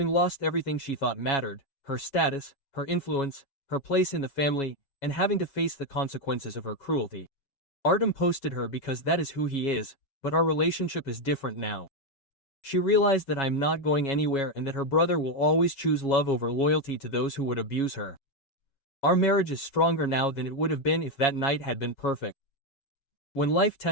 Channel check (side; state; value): right; late; 7.3 ms